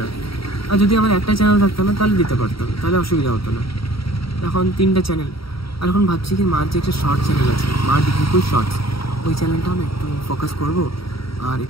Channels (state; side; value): late; right; 0.75 ms